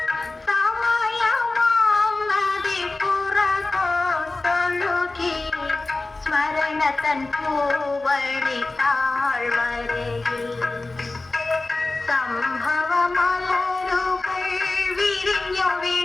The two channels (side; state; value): right; quieter; 3.2 dB